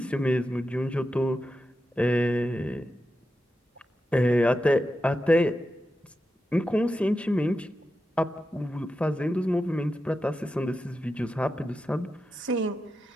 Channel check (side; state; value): both; normal; correlation 0.90